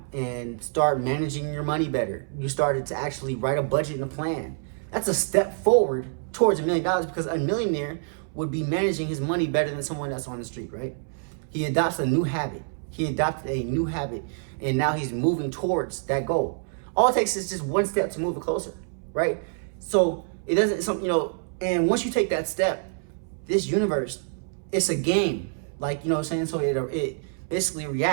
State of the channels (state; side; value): silent; left; 61 dB below the other